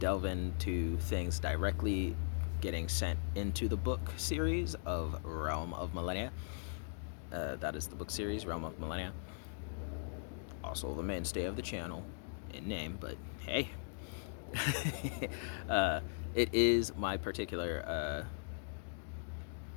into things directly getting sent into the book series of Realm of Millenia. That is the book series, Realm of Millenia. Also the mainstay of the channel in name, but hey. It is my particular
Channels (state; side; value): silent; right; digital silence